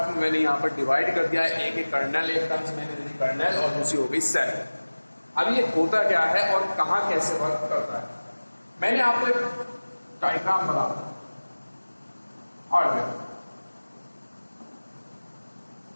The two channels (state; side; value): inverted; both; correlation -1.00